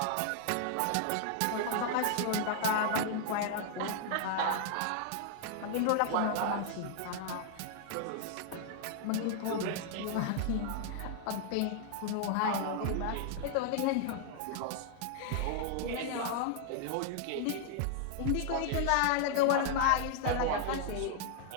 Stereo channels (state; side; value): different; both; correlation -0.01